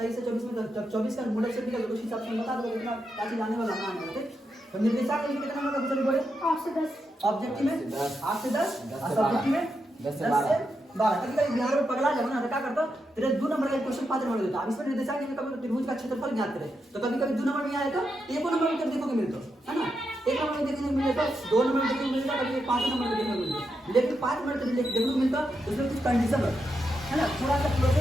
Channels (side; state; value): both; normal; correlation 0.85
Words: से 24 में, जब 24 का मॉडल सेट निकल उस हिसाब से बता दो कितना क्या चीज आने वाला ना आने, ठीक। तो निर्देशांक में कितना नंबर का पूछने पड़े? 8 से 10, ऑब्जेक्टिव में 8 से 10 और सब्जेक्टिव में 10 से 12। कभी कभी बिहार में पगला जाओ ना, तो क्या करता तेरे 2 नंबर का क्वेश्चन 5 नंबर देता। अब इसमें निर्देशांक में कभी त्रिभुज का क्षेत्रफल ज्ञात करे, तो कभी कभी 2 नंबर में आए तो एक नंबर में देखो के मिलता है ना, 1 नंबर में देखने को मिलेगा, 2 नंबर में देखने को मिलेगा, कभी 5 नंबर में देखने को मिलेगा। लेकिन 5 नंबर में देखने को मिलता उसमें कुछ कंडीशन है ना, थोड़ा सा